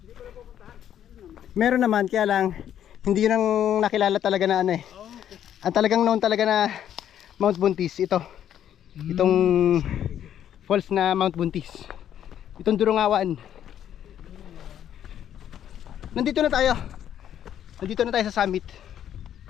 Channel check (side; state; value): right; quieter; 10.3 dB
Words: Meron naman, kaya lang hindi yun ang nakilala talaga na ano eh. Ang talagang known talaga na Mount Buntis, ito. Itong falls na Mount Buntis. Itong Durungawan. Nandito na tayo. Nandito na tayo sa summit.